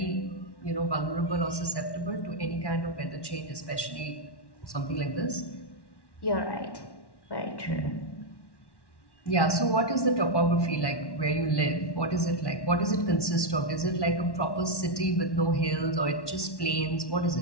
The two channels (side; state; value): right; late; 1.1 ms